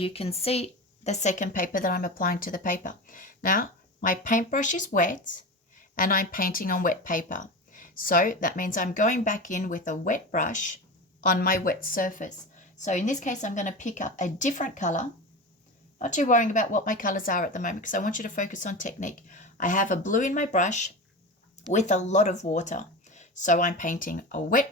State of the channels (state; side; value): normal; both; correlation 0.26